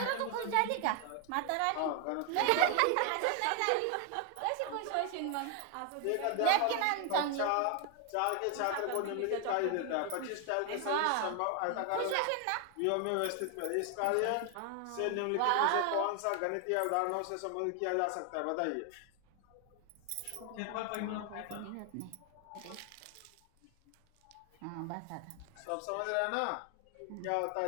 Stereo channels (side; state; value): both; different; correlation 0.01